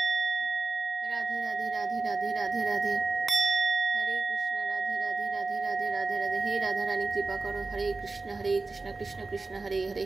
রাধে রাধে রাধে রাধে রাধে, হরে কৃষ্ণ। রাধে রাধে রাধে রাধে রাধে রাধে। হে রাধা রানী কৃপা করো। হরে কৃষ্ণ কৃষ্ণ কৃষ্ণ হরে হরে,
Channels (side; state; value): left; quieter; 3.7 dB